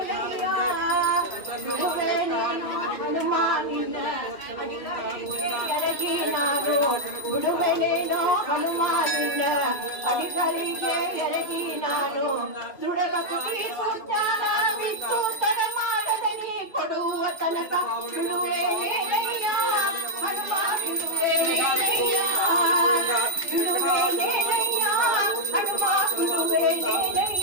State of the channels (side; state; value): right; late; 2.6 ms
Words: ಬಿಡುವೆನೇನೋ ಹನುಮಾನಿನ ಅಡಿಗಳಿಗೆ ಎರಗಿ ನಾನು ದುಡಬಕಿ ಸುತ್ತಾನ ಬಿಟ್ಟು ತಡ ಮಾಡದೆ ನೀ ಕೊಡುವ ತನಕ ಬಿಡುವೆನೇನಯ್ಯ ಹನುಮ ಬಿಡುವೆನೇನಯ್ಯ ಬಿಡುವೆನೇನಯ್ಯ ಹನುಮ